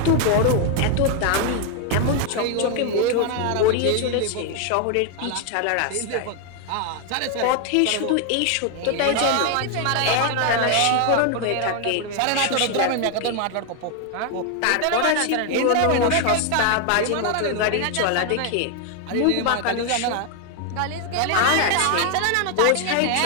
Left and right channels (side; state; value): both; different; correlation 0.00